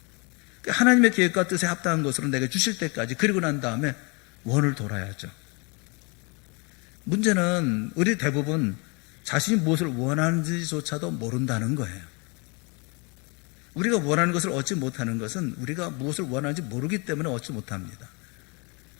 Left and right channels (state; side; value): quieter; right; 31.2 dB